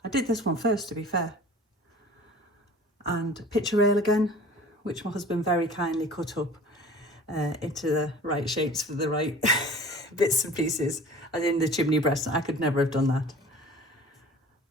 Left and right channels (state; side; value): normal; both; correlation 0.44